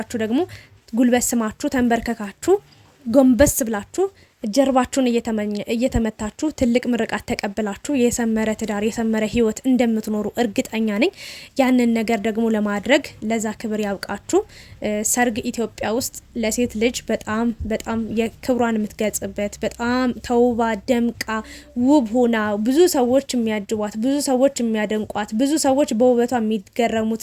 ደግሞ ጉልበት ስማችሁ ተንበርከካችሁ ጎንበስ ብላችሁ ጀርባችሁን እየተመታችሁ ትልቅ ምርቃት ተቀብላችሁ የሰመረ ትዳር የሰመረ ህይወት እንደምትኖሩ እርግጠኛ ነኝ። ያንን ነገር ደግሞ ለማድረግ ለዛ ክብር ያብቃችሁ። ሰርግ ኢትዮጵያ ውስጥ ለሴት ልጅ በጣም የክብሯን የምትገልጽበት በጣም ተውባ ደምቃ ውብ ሆና ብዙ ሰዎች የሚያጅቧት ብዙ ሰዎች የሚያደንቋት ብዙ ሰዎች በውበቷ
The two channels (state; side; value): identical; both; correlation 1.00